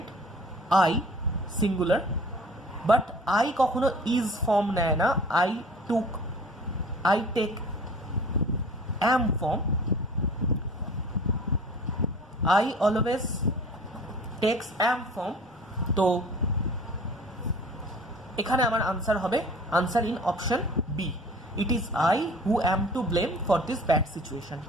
I singular, but I কখনো ইজ ফর্ম নেয় না, I take am form, I always takes am form। তো এখানে আমার আনসার হবে answer in option B, it is I who am to blame for this bad situation.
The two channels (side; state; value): both; normal; correlation 0.46